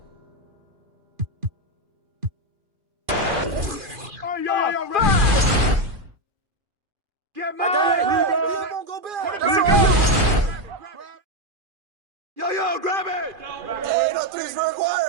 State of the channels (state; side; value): late; left; 2.4 ms